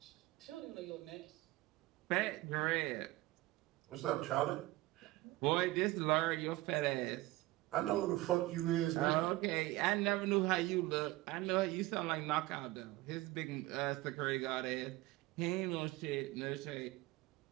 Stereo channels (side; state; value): left; quieter; 18.9 dB